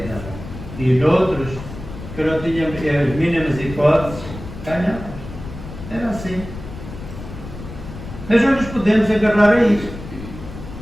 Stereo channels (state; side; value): noise; left; rumble, 12 dB below the sound